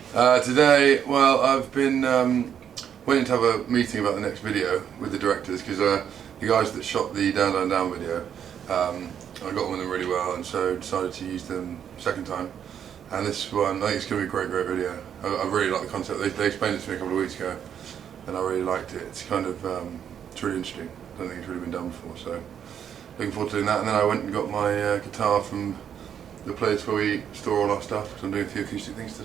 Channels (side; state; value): left; quieter; 8.7 dB